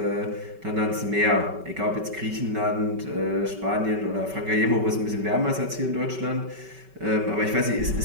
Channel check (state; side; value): late; left; 5.2 ms